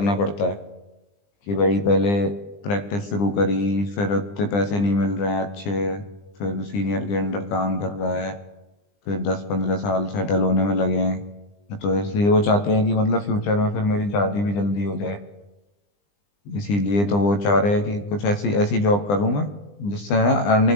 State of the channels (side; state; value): right; late; 20 ms